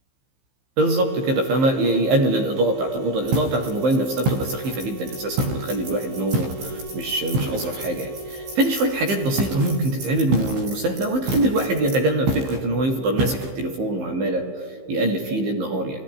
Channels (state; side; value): late; left; 15 ms